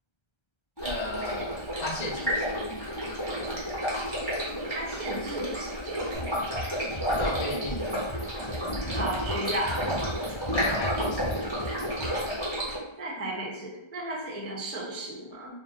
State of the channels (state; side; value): late; right; 1.3 ms